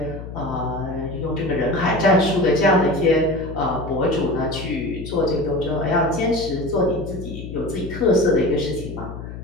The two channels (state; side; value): noise; left; hum, 10 dB below the sound